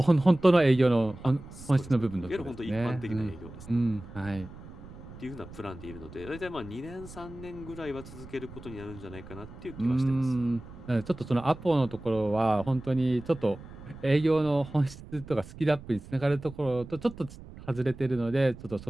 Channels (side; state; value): right; noise; rumble, 16 dB below the sound